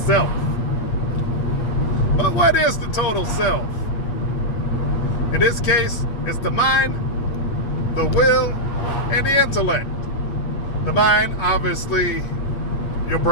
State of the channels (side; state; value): right; late; 8.5 ms